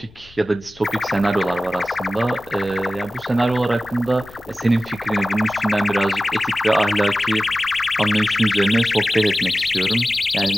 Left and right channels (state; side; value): noise; left; rumble, 26 dB below the sound